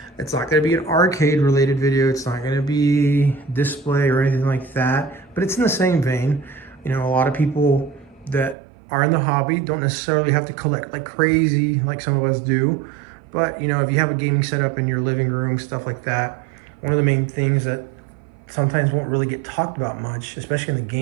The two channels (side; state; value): left; drops out; at 8.6 s